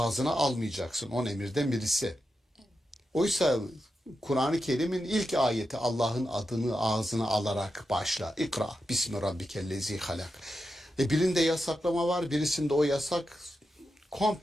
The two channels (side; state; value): both; normal; correlation 0.88